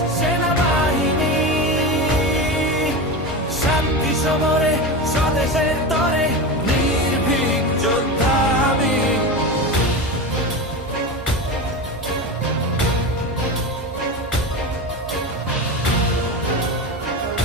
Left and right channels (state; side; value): normal; both; correlation 0.23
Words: সেনাবাহিনী শান্তি সমরে স্বদেশের তরে নির্ভীক যোদ্ধা আমি।